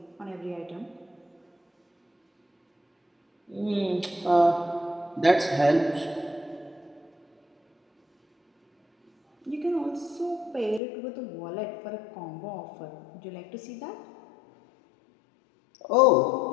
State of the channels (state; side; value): drops out; right; at 10.8 s